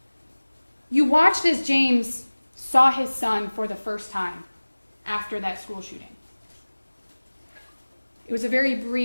You watched as James saw his son for the first time after that school shooting. It was a very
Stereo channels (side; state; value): both; inverted; correlation -1.00